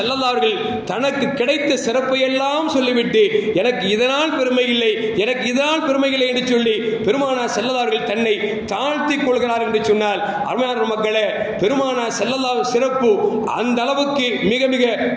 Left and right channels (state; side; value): identical; both; correlation 1.00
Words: அலைஹி வஸல்லம் தனக்கு கிடைத்த சிறப்பை எல்லாம் சொல்லிவிட்டு எனக்கு இதனால் பெருமை இல்லை, எனக்கு இதனால் பெருமை இல்லை என்று சொல்லி பெருமானார் ஸல்லல்லாஹு அலைஹி வஸல்லம் தன்னை தாழ்த்திக் கொள்கிறார் என்று சொன்னால், அருமையான மக்களே, பெருமானார் ஸல்லல்லாஹு அலைஹி வஸல்லம் சிறப்பு அந்த அளவுக்கு மிக மிக